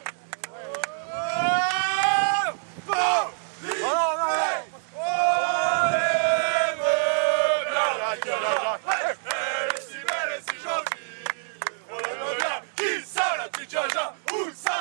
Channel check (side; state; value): left; silent; digital silence